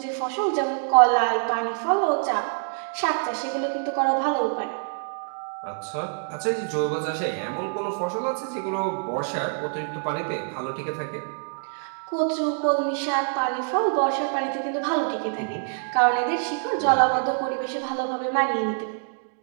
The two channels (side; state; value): left; silent; digital silence